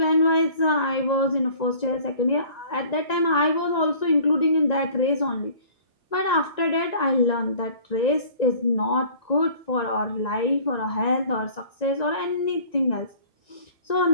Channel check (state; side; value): late; right; 1.9 ms